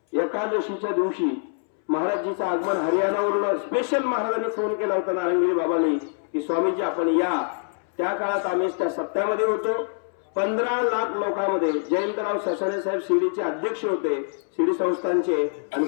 एकादशीच्या दिवशी महाराजजीचं आगमन हरियाणावरून स्पेशल महाराजांनी फोन केला होता नारायणगिरी बाबांनी की स्वामीजी आपण या. त्या काळात आम्ही त्या सप्त्यामध्ये होतो. 15 लाख लोकांमध्ये जयंतराव ससाणे साहेब शिर्डीचे अध्यक्ष होते, शिर्डी संस्थानचे, आणि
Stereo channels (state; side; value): silent; right; 62 dB below the other